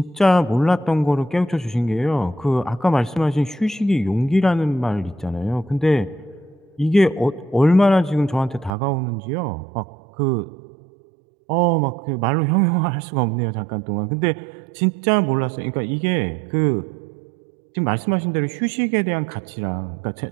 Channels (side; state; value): left; drops out; at 8.7 s